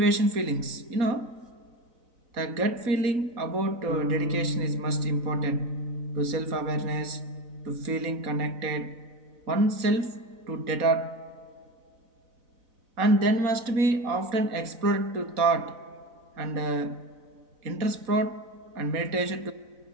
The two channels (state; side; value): late; left; 4.0 ms